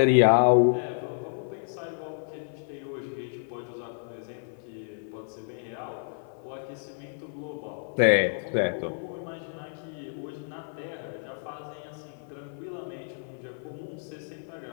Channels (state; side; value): silent; right; 56 dB below the other